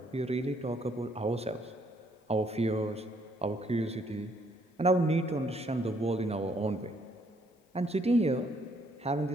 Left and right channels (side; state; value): both; normal; correlation 0.68